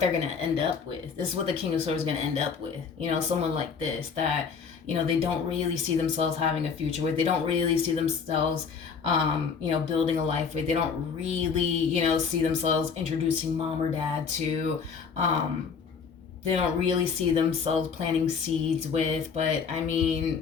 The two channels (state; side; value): quieter; right; 6.0 dB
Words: going to end up with. This is what the King of Swords is going to end up with. You know, someone like this that, you know, they don't really see themselves having a future with. They don't really see themselves, you know, building a life with. They don't really, you know, see themselves introducing mom or dad to. They don't really see themselves planting seeds with. But, I